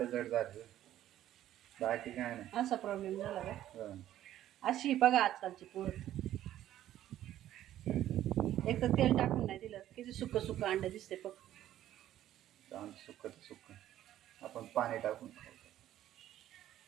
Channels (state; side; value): quieter; left; 12.6 dB